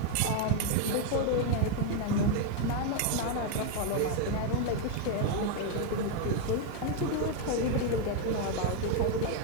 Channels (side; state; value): both; different; correlation 0.01